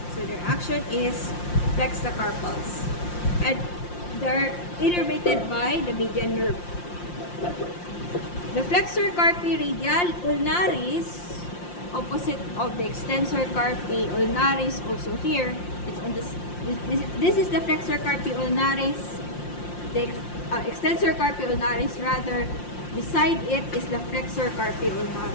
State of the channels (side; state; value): right; late; 5.7 ms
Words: So their action is flex the carpals, and they're innervated by the median nerve. The flexor carpi radial ulnaris, opposite of the extensor carpi ulnaris, also here. It's on this is the flexor carpi ulnaris. The extensor carpi ulnaris, rather, beside it is the flexor carpi